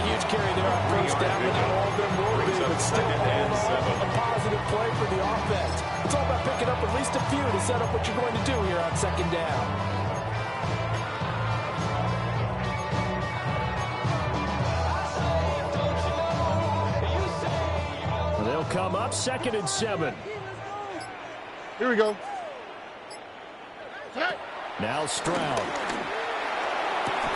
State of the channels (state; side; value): identical; both; correlation 1.00